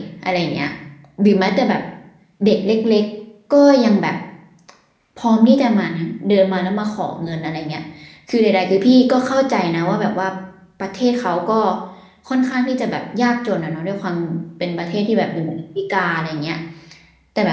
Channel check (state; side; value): identical; both; correlation 1.00